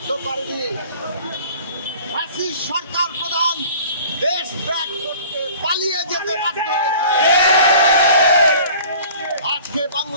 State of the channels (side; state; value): both; inverted; correlation -0.47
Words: করেনি, ফ্যাসিস্ট সরকার প্রধান দেশ ত্যাগ করতে পালিয়ে যেতে বাধ্য হয়েছে। আজকে